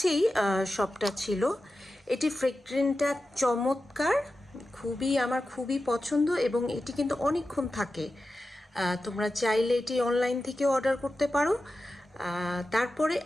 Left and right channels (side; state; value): both; normal; correlation 0.92